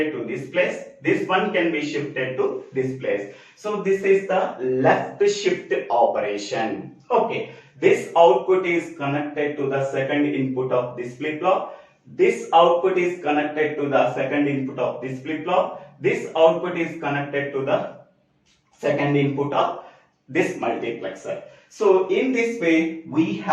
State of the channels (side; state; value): both; identical; correlation 1.00